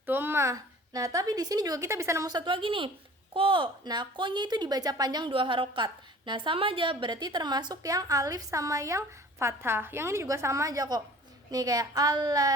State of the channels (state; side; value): normal; both; correlation 0.47